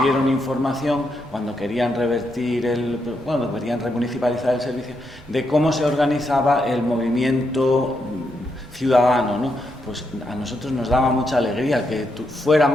información cuando querían querían remunicipalizar el servicio, de cómo se organizaba el movimiento ciudadano, ¿no? Pues a nosotros nos daba mucha alegría que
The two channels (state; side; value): normal; both; correlation 0.81